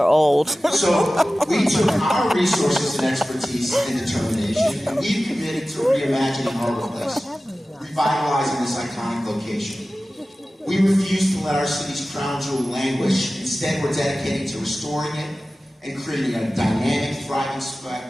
old. So we took our resources and expertise and determination, and we've committed to reimagining Harbor Place, revitalizing this iconic location. We refuse to let our city's crown jewel languish. Instead, we're dedicated to restoring it and creating a dynamic, thriving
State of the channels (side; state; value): both; normal; correlation 0.96